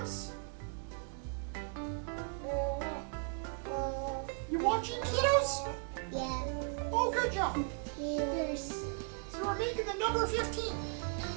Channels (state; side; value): quieter; left; 38.3 dB